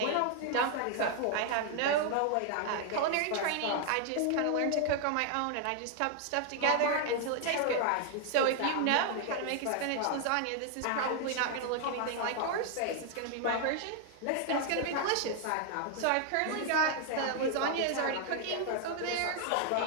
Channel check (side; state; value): both; different; correlation 0.00